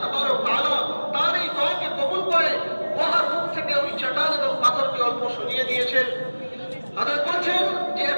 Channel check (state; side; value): inverted; both; correlation -1.00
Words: তাবারক তাআলা তার এই দোয়াকে কবুল করে গুহার মুখ থেকে ওই চটান এবং পাথরকে অল্প সরিয়ে দিয়েছেন। হযরত বলছেন যে